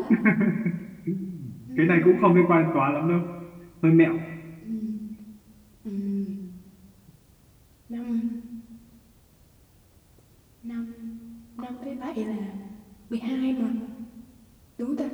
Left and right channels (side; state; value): both; identical; correlation 1.00